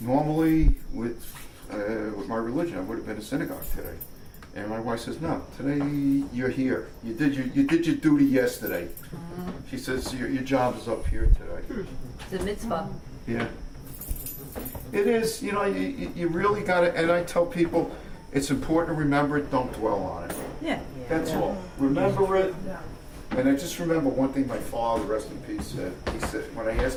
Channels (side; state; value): both; identical; correlation 1.00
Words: normally with my religion, I would have been in synagogue today. And my wife says, no, today you're here. You did your duty yesterday. She says, your job is up here today. It's a mitzvah. Yeah. It is, you really got to, and I tell people, it's important to remember it, don't dwell on it. Yeah. That's all. Remember it. And I just remember one thing my father, rest in peace, said. He said, when I